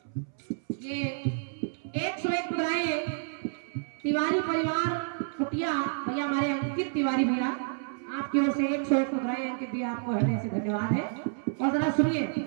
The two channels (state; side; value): silent; left; 58 dB below the other